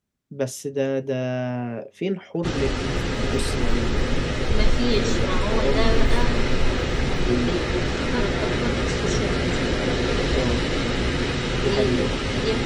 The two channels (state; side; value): identical; both; correlation 1.00